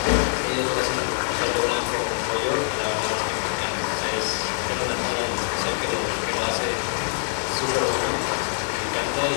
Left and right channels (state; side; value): silent; right; digital silence